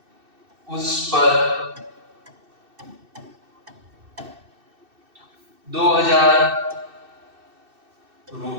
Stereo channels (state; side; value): late; left; 2.6 ms